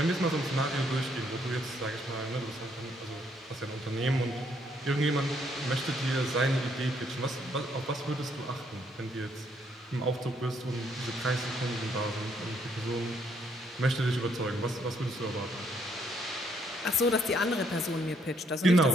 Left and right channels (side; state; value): both; normal; correlation 0.71